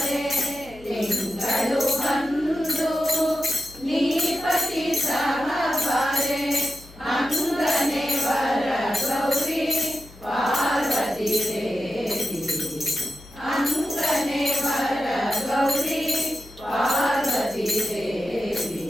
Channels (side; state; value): left; noise; hum, 22 dB below the sound